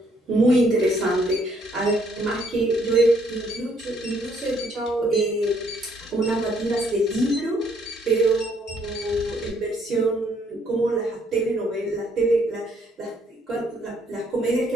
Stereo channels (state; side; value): normal; both; correlation 0.68